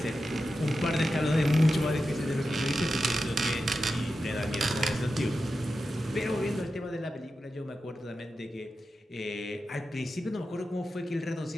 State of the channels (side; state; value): both; normal; correlation 0.91